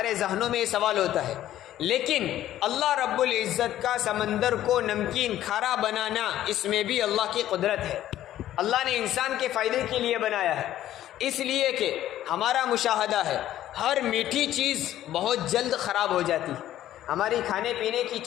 ذہنوں میں یہ سوال ہوتا ہے، لیکن اللہ رب العزت کا سمندر کو نمکین کھارا بنانا، اس میں بھی اللہ کی قدرت ہے۔ اللہ نے انسان کے فائدے کے لیے بنایا ہے۔ اس لیے کہ ہمارا مشاہدہ ہے ہر میٹھی چیز بہت جلد خراب ہو جاتی ہے۔ ہماری کھانے پینے کی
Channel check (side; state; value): right; quieter; 12.9 dB